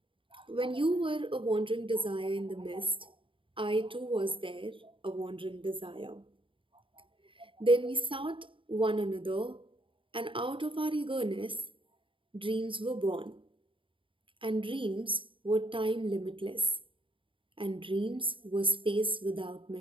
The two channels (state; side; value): late; left; 0.25 ms